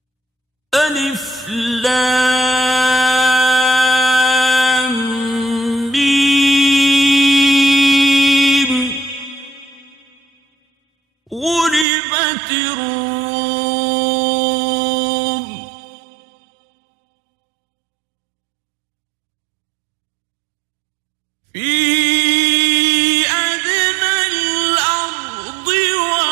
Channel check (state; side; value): drops out; left; at 11.9 s